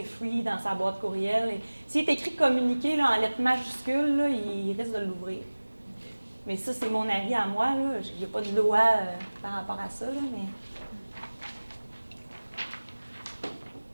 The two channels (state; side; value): inverted; both; correlation -1.00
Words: free dans sa boîte courriel. S'il est écrit communiqué là, en lettres majuscules, là, il risque de l'ouvrir. Mais ça, c'est mon avis à moi. Il n'y a pas de loi par rapport à ça, là,